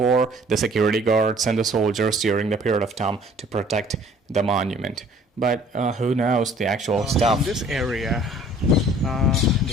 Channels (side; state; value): both; normal; correlation 0.54